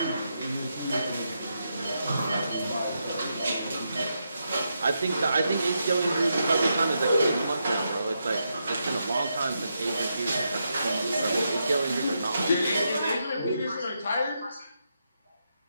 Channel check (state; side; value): inverted; both; correlation -0.83